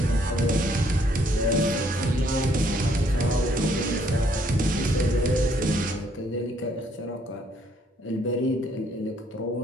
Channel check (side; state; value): both; normal; correlation 0.67